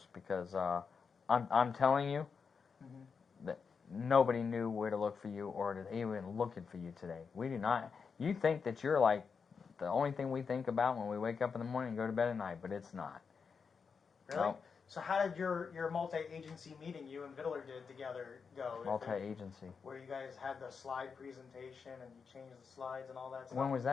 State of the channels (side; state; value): right; quieter; 5.7 dB